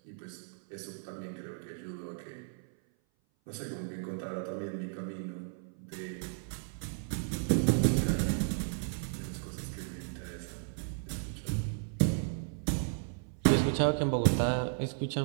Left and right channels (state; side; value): silent; left; 55 dB below the other